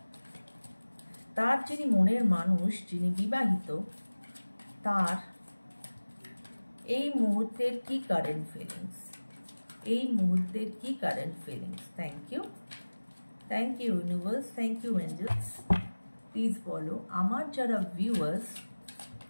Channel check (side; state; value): both; inverted; correlation -1.00